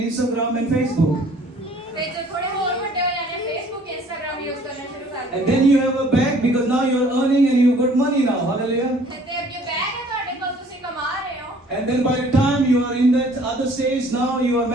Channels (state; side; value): normal; both; correlation 0.55